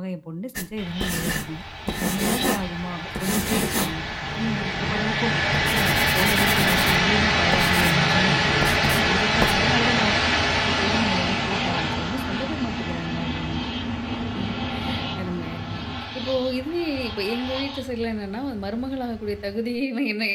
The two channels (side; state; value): both; identical; correlation 1.00